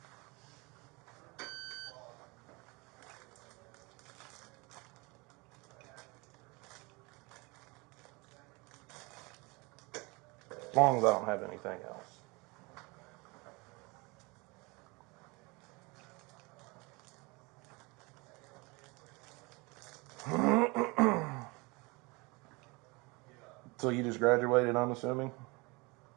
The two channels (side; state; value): left; quieter; 26.5 dB